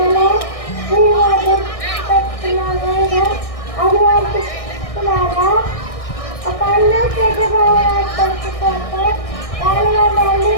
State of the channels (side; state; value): right; late; 1.6 ms